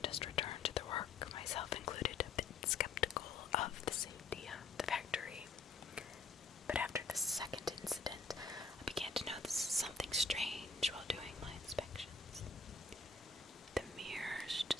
just returned to their work, myself included, a bit skeptical of the safety of the factory. But after the second incident, I began to notice something strange while doing my inspections. The mirrors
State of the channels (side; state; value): right; quieter; 4.1 dB